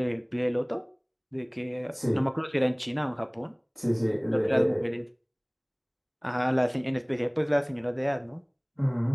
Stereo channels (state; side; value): identical; both; correlation 1.00